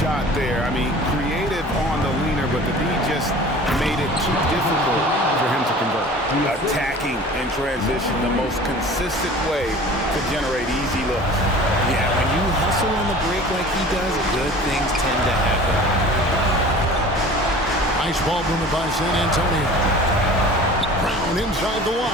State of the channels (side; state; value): both; normal; correlation 0.43